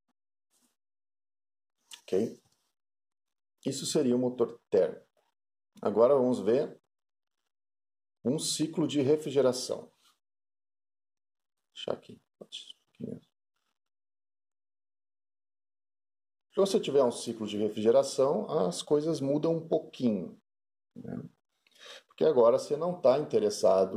Ok? Isso seria o motor térmico. Agora vamos ver um ciclo de refrigeração. Deixa aqui. Se você tiver um ciclo de refrigeração, as coisas mudam um pouquinho. Né? Porque agora você não está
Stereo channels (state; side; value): identical; both; correlation 1.00